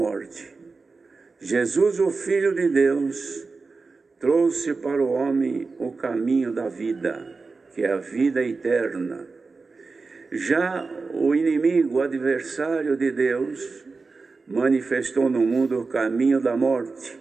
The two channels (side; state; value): left; quieter; 4.2 dB